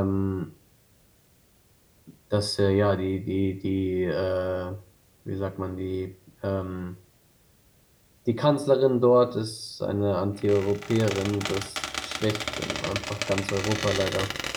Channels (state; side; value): identical; both; correlation 1.00